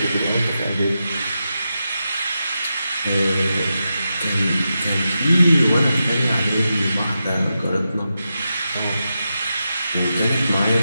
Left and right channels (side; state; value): both; inverted; correlation -0.89